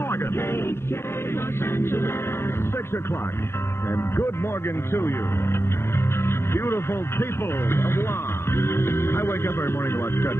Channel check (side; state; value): right; late; 0.12 ms